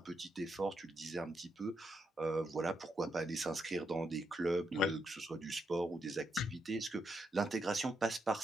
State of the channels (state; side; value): normal; both; correlation 0.81